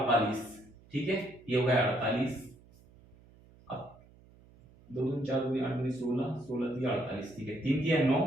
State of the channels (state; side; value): noise; right; hum, 26 dB below the sound